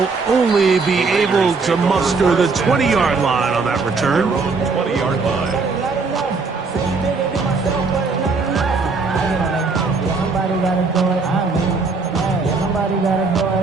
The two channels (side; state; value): left; quieter; 4.3 dB